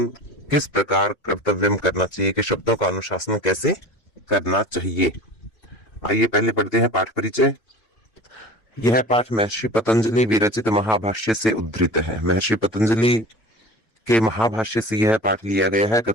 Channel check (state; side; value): late; right; 3.1 ms